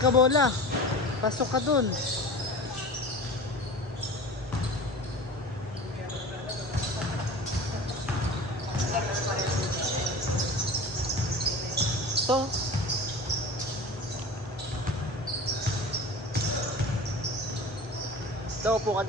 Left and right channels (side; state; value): both; normal; correlation 0.36